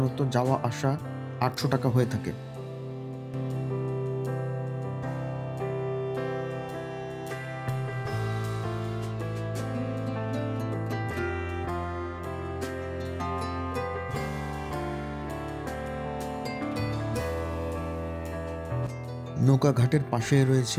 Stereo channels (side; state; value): both; identical; correlation 1.00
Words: যাওয়া আসা 800 টাকা হয়ে থাকে। নৌকা ঘাটের পাশে